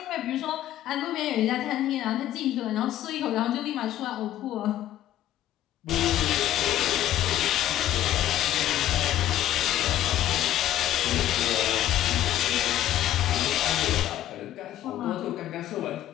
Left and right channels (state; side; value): quieter; right; 12.8 dB